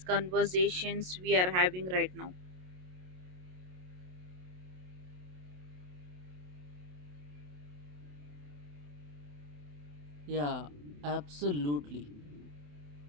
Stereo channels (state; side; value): late; left; 27 ms